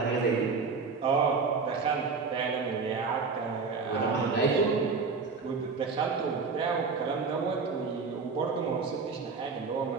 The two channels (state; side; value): quieter; left; 4.8 dB